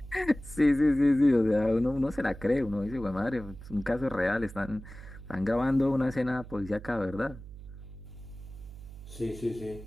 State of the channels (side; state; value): right; noise; hum, 15 dB below the sound